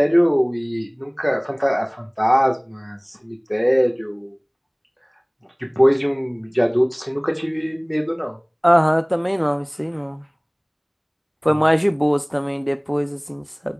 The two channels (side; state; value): both; identical; correlation 1.00